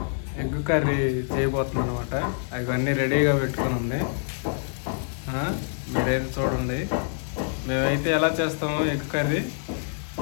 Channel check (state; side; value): silent; right; digital silence